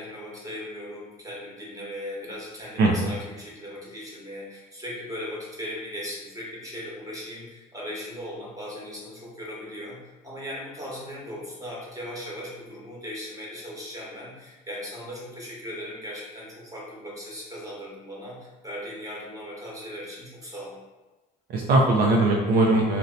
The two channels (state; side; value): normal; both; correlation 0.47